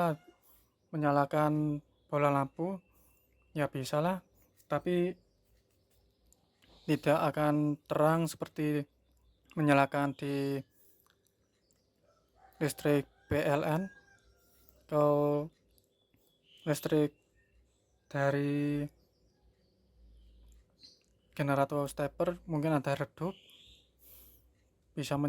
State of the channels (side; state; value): both; identical; correlation 1.00